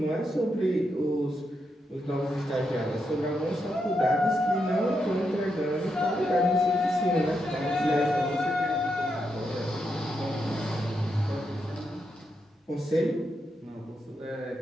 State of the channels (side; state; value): both; normal; correlation 0.83